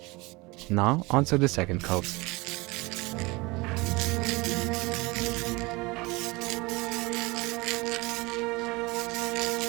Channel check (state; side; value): quieter; left; 24.1 dB